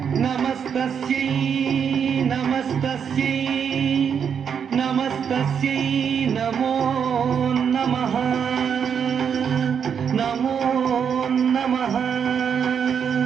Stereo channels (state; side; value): quieter; left; 7.4 dB